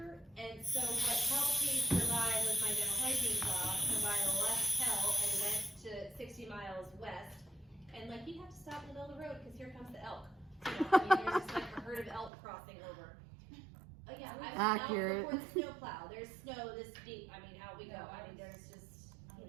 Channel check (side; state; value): left; drops out; at 12.3 s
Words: and so what helped me survive was my dental hygiene job, combined left hell and went to 60 miles west, and like you have to stop in the middle of the road because here comes the elk. There's just like a herd of elk crossing over. Oh yeah, I was Accurate. out before the snow plow. There's snow this deep. I mean, out we go. I mean, there's just